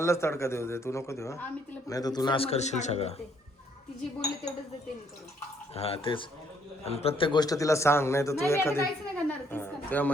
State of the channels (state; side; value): normal; both; correlation 0.68